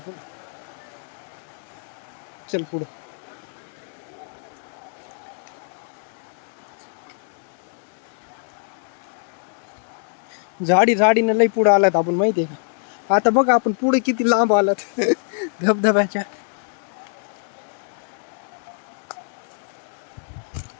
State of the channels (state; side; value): silent; right; 58 dB below the other